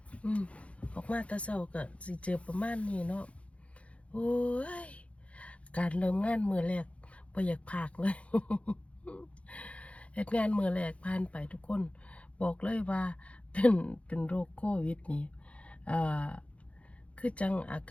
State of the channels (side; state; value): right; late; 0.063 ms